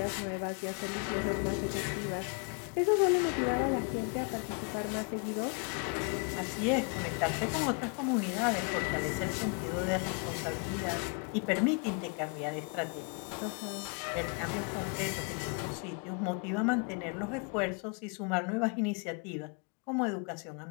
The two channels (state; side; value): quieter; right; 37.4 dB